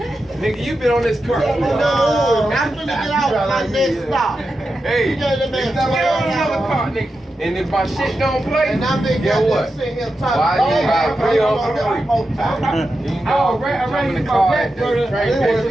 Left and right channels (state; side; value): normal; both; correlation 0.90